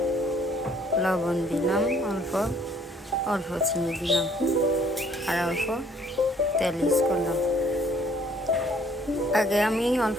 লবণ দিলাম, অল্প চিনি দিলাম আর অল্প তেল ইউজ করলাম। আগে আমি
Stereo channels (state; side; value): normal; both; correlation 0.61